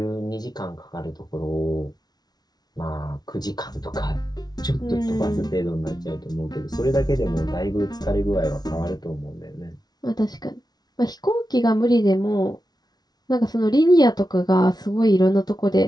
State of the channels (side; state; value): right; late; 0.19 ms